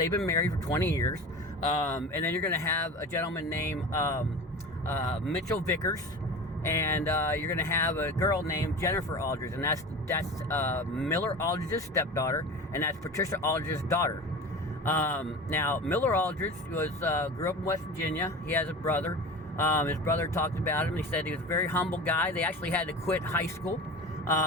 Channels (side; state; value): both; normal; correlation 0.33